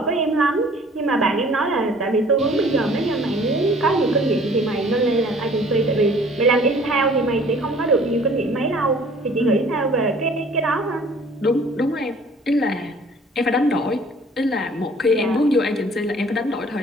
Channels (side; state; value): both; normal; correlation 0.52